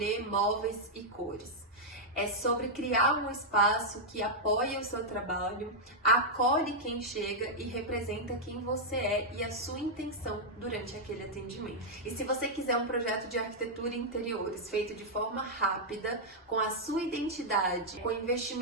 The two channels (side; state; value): both; normal; correlation -0.05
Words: móveis e cores. É sobre criar um espaço que apoia o seu trabalho, acolhe quem chega e representa quem você é e a sua intenção durante aquele atendimento. E se você quiser um projeto de arquitetura e interiores feito de forma rápida, com a sua identidade, com